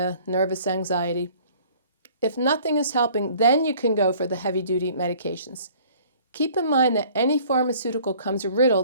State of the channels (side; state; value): both; inverted; correlation -0.53